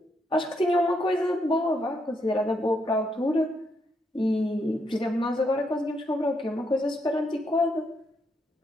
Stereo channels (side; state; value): both; normal; correlation 0.77